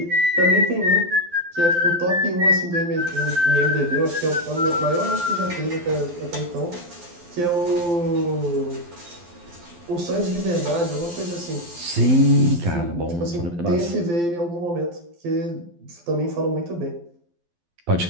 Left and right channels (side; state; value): left; late; 12 ms